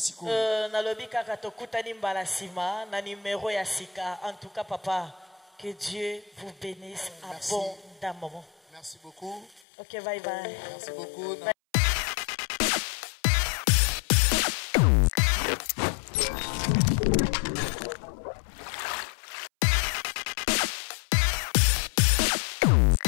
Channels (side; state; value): right; drops out; at 9.6 s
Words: Na lobi kaka tokutani mbala sima na numéro ya sika. En tout cas papa, que Dieu vous bénisse abondamment. Merci beaucoup. OK, bye bye. Merci beaucoup.